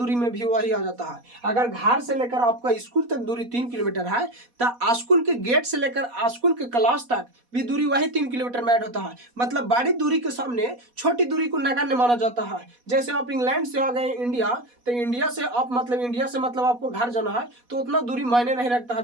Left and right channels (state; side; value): late; left; 4.1 ms